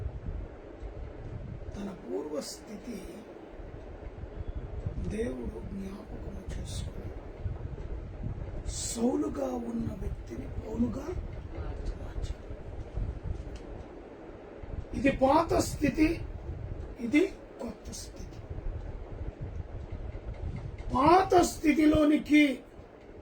తన పూర్వస్థితి దేవుడు జ్ఞాపకం చేసుకుని సౌలుగా ఉన్న వ్యక్తిని పౌలుగా మార్చాడు. ఇది పాత స్థితి, ఇది కొత్త స్థితి. పాత స్థితిలోనికి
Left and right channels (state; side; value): identical; both; correlation 1.00